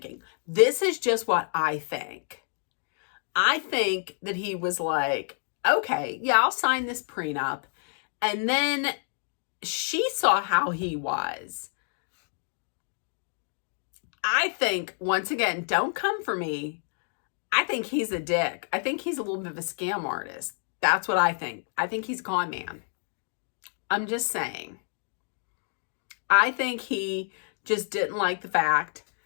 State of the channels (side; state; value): right; silent; 56 dB below the other